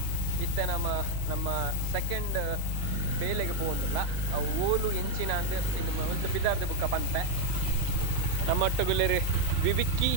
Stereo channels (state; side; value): different; both; correlation 0.01